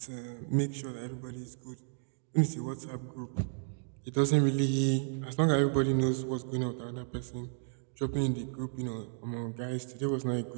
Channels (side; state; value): left; silent; 56 dB below the other